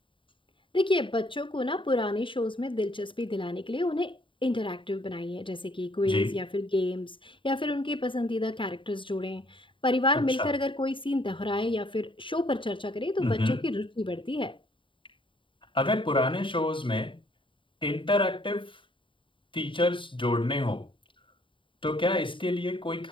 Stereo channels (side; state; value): right; late; 0.25 ms